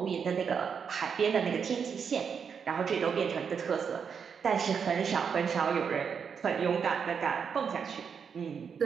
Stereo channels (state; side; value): quieter; left; 6.6 dB